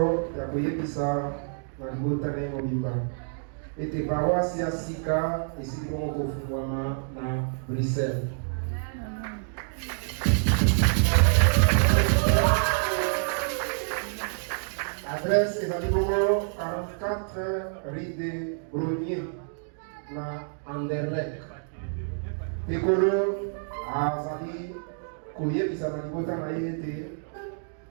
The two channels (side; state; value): left; silent; digital silence